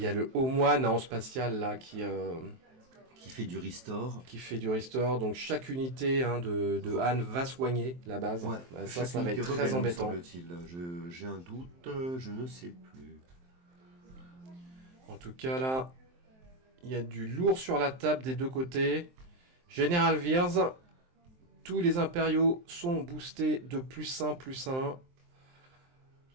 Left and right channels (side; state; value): left; late; 23 ms